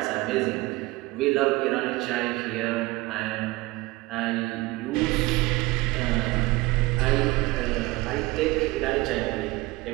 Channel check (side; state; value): left; quieter; 21.1 dB